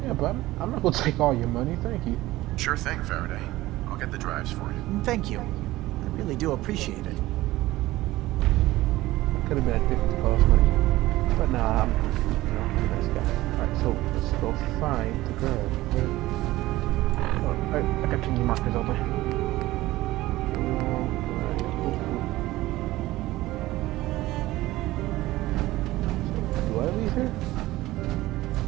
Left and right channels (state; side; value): quieter; left; 17.3 dB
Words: Yeah, but I'm not gonna take all your money. Thank you. Sure thing, Faraday. I'll get the drives for you. Thank you. I really do appreciate it. Could have been a different cost money, but nah, I'm a nice guy. Alright, so let's go find the girl. Oh, I got too many markers open. Do I leave here?